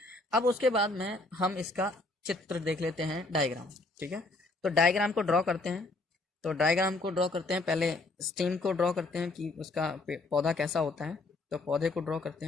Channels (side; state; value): right; quieter; 3.1 dB